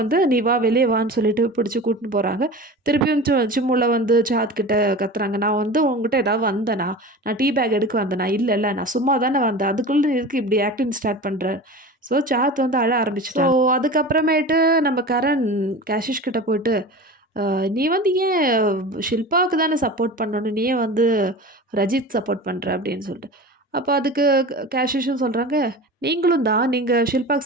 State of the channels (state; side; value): normal; both; correlation 0.33